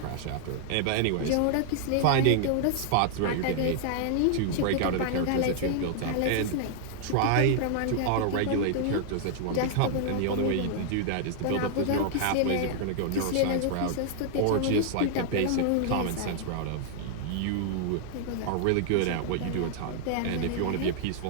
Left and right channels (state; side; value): different; both; correlation 0.00